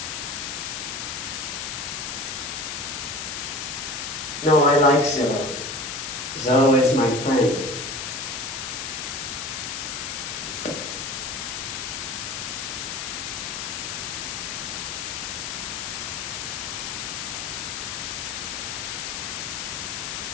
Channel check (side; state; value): left; noise; hiss, 4 dB below the sound